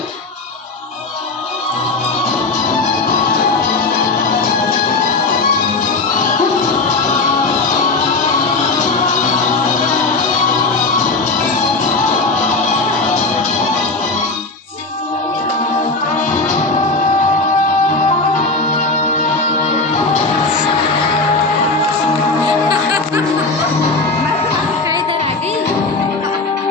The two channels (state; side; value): quieter; right; 3.4 dB